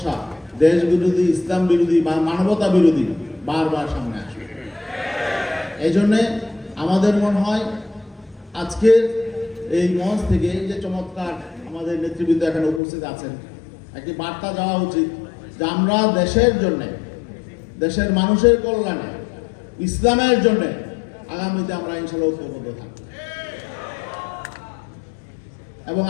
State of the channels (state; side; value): drops out; right; at 12.8 s